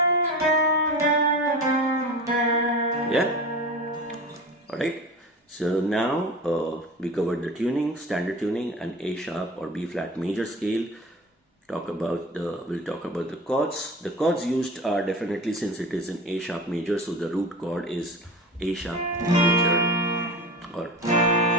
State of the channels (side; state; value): both; normal; correlation 0.33